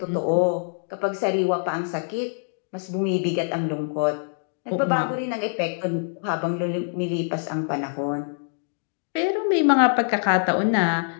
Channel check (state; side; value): silent; right; digital silence